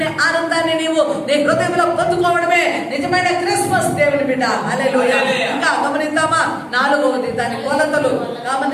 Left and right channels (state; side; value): identical; both; correlation 1.00